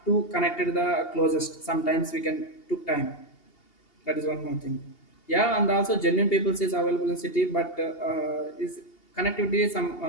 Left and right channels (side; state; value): right; late; 2.8 ms